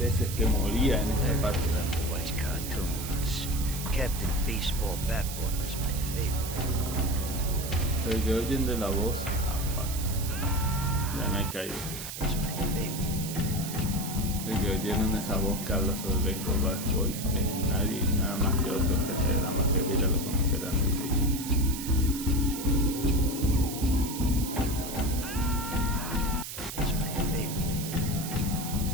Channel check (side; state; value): right; noise; hiss, 8 dB below the sound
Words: que moría en esta parte. Watch cartoons. Captain Baseball Bat Boy was my favorite. Pero que oyen de la voz, fuck. Ya me he caído. El que oyeron esa voz que habla sobre Baseball Bat Boy es nadie, nada más que otro jefe de la mafia, que ya lo conocerán enseguida.